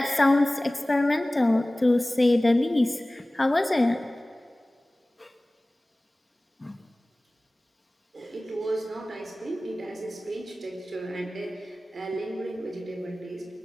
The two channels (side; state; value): both; normal; correlation 0.98